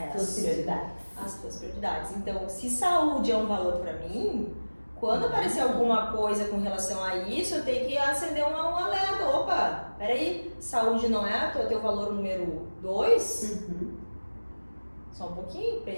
As tuas prioridades. Então, se saúde é um valor para mim, quando aparecer alguma coisa com relação a isso, eu tenho que acender um alerta. Opa, peraí, saúde não é o teu valor número 2? Só um pouquinho,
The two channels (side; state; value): both; inverted; correlation -1.00